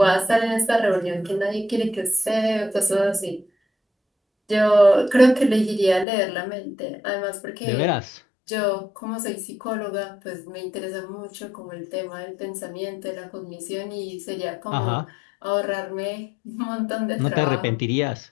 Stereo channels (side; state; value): right; drops out; at 6.1 s